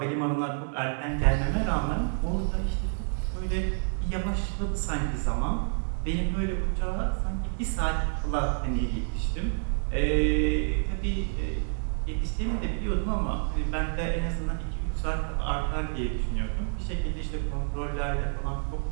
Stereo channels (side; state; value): left; silent; digital silence